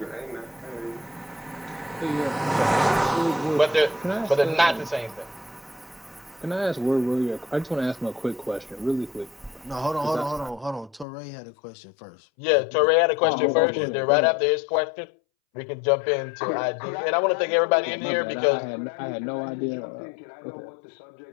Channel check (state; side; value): drops out; right; at 11.1 s